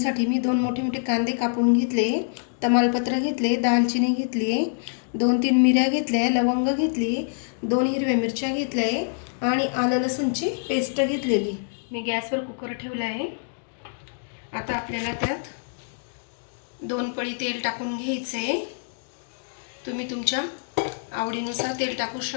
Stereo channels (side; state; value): right; silent; digital silence